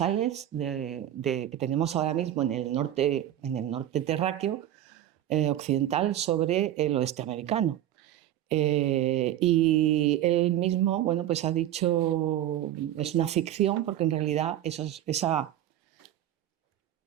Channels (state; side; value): quieter; left; 12.2 dB